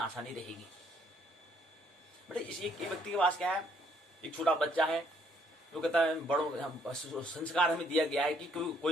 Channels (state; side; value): normal; both; correlation 0.66